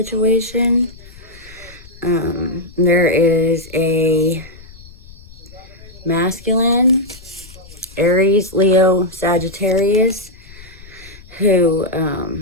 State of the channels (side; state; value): left; noise; rumble, 21 dB below the sound